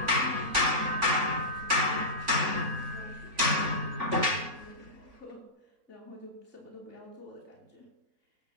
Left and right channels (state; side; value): late; left; 3.5 ms